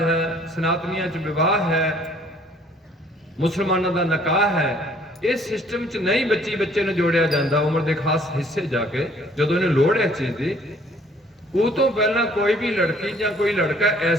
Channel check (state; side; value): normal; both; correlation 0.59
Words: ਹੈ, ਸਨਾਤਨੀਆਂ 'ਚ ਵਿਵਾਹ ਹੈ, ਮੁਸਲਮਾਨਾਂ ਦਾ ਨਿਕਾਹ ਹੈ, ਇਸ ਸਿਸਟਮ 'ਚ ਨਹੀਂ ਬੱਚੇ ਨੂੰ ਜੋੜਿਆ ਜਾਂਦਾ ਉਮਰ ਦੇ ਖਾਸ ਹਿੱਸੇ ਜਾ ਕੇ, ਜਦੋਂ ਇਹਨੂੰ ਲੋੜ ਹੈ ਚੀਜ਼ ਦੀ। ਉਹ ਤੋਂ ਪਹਿਲਾਂ ਕੋਈ ਵੀ ਲੜਕੀ ਜਾਂ ਕੋਈ ਲੜਕਾ